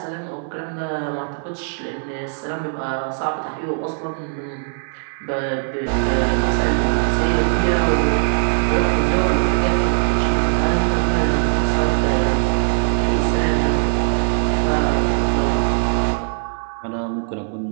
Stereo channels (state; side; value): silent; left; 61 dB below the other